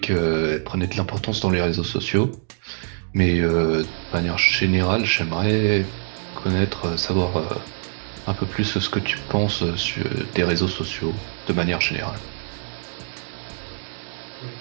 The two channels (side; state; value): left; silent; digital silence